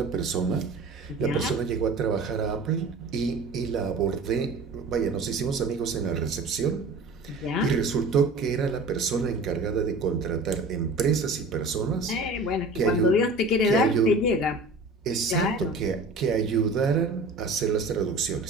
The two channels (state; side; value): quieter; left; 3.1 dB